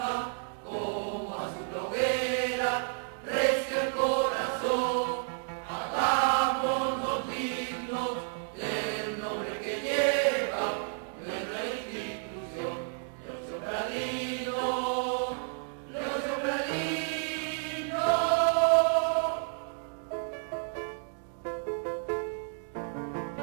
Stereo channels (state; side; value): silent; left; 57 dB below the other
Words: como azul hoguera, recio el corazón, hagámonos dignos del nombre que lleva nuestra institución. Leocentradino, Leocentradino.